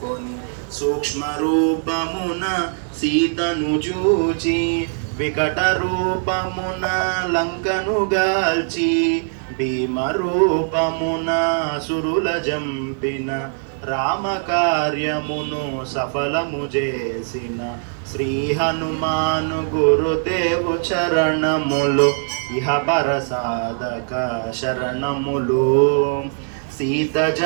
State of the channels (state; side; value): silent; left; 63 dB below the other